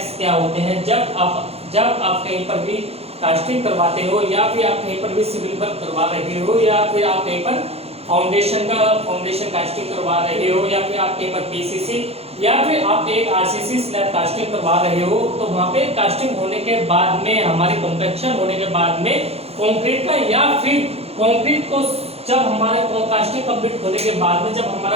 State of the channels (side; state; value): left; late; 0.29 ms